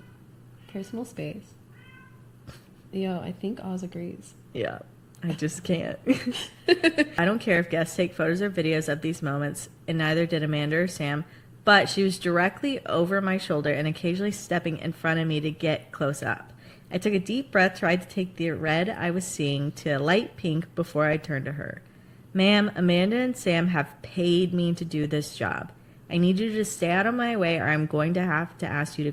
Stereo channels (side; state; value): both; identical; correlation 1.00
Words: Personal space. Yo, I think Oz agrees. Yeah, I just can't. I don't care if guests take photos or videos of these moments, and neither did Amanda or Sam, but she was directly over my shoulder and occasionally stepping in front of me to get close up. I took a deep breath, tried to take the red I was seeing to a light pink before I turned to her. Ma'am, Amanda and Sam have paid me to do this job. I need you to stay out of my way or I'm going to have to ask you to